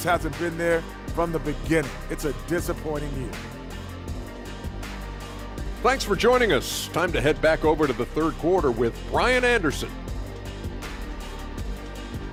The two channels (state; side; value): identical; both; correlation 1.00